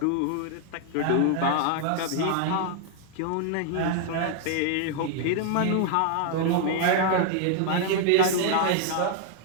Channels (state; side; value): different; both; correlation 0.00